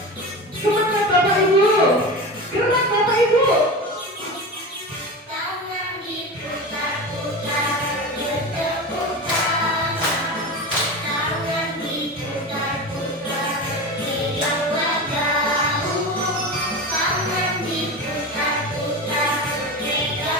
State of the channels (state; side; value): normal; both; correlation 0.27